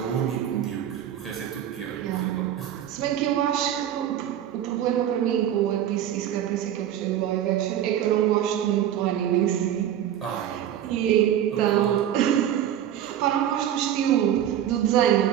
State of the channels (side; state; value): left; quieter; 10.8 dB